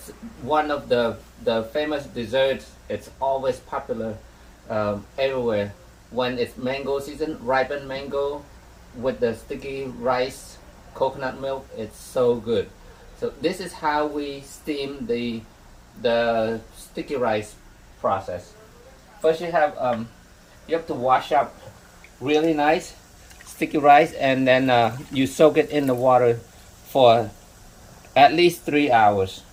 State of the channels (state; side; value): identical; both; correlation 1.00